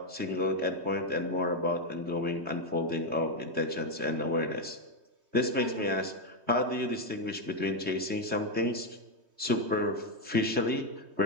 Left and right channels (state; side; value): late; left; 3.2 ms